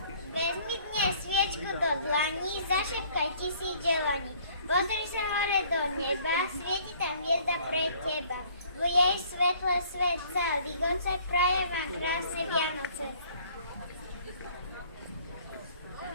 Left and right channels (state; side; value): inverted; both; correlation -0.56